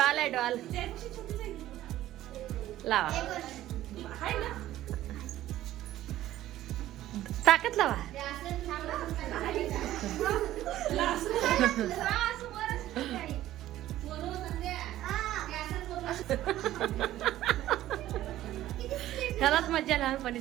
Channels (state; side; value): quieter; left; 14.0 dB